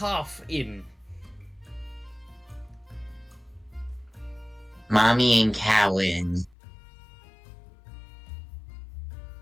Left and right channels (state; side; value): drops out; right; at 6.6 s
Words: Inn. Mommy and Cowan.